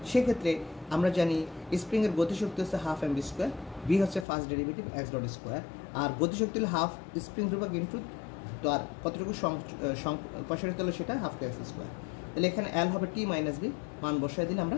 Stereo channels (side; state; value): right; drops out; at 4.2 s